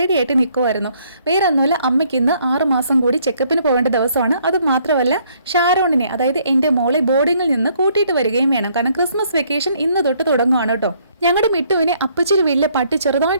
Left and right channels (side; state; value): both; inverted; correlation -0.66